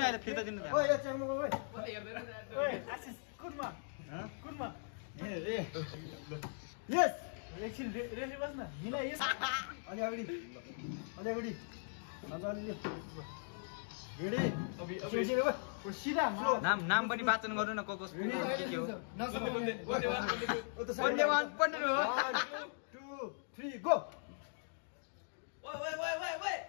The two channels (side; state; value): right; silent; digital silence